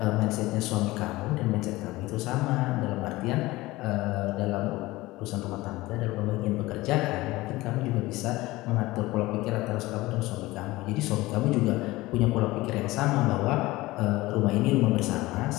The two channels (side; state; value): right; quieter; 19.4 dB